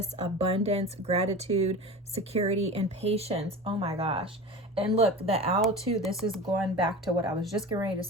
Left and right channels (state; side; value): normal; both; correlation 0.32